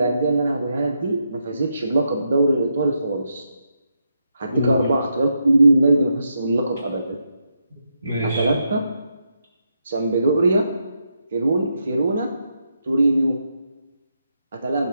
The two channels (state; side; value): inverted; both; correlation -0.83